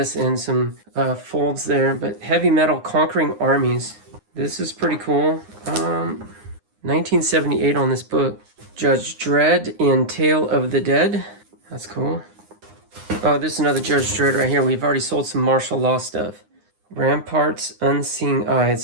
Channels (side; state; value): left; late; 9.7 ms